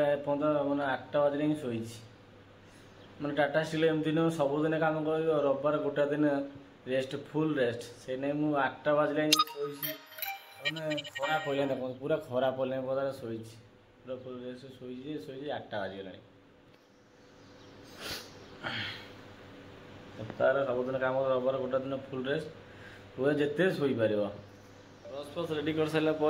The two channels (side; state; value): both; identical; correlation 1.00